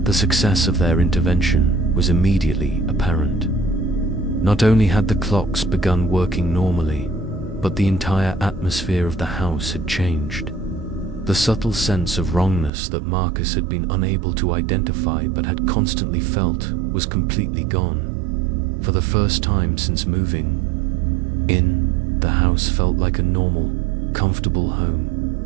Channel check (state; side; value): drops out; left; at 12.7 s